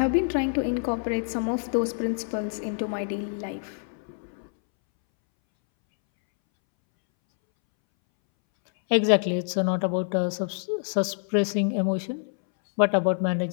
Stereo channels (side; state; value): right; silent; 61 dB below the other